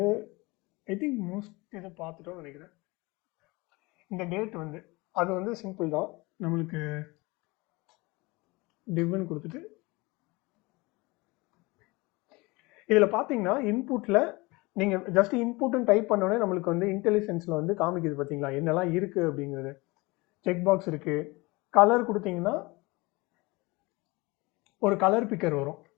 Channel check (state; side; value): quieter; right; 24.0 dB